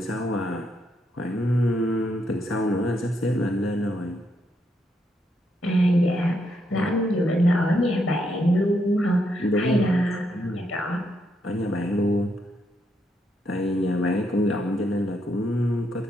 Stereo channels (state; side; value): normal; both; correlation 0.78